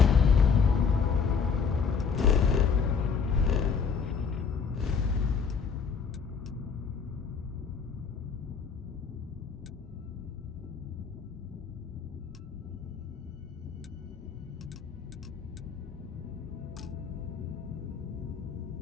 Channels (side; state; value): right; quieter; 5.9 dB